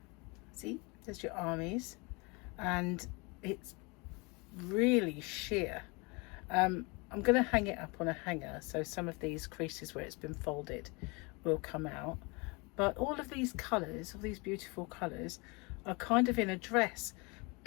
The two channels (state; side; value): quieter; right; 28.3 dB